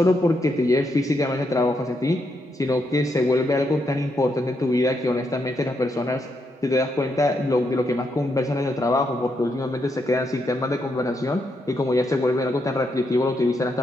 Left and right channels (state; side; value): normal; both; correlation 0.80